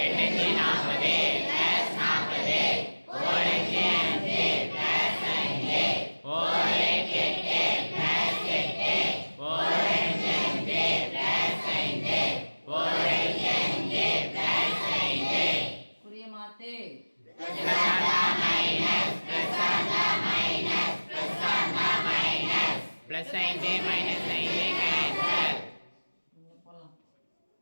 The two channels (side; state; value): both; inverted; correlation -1.00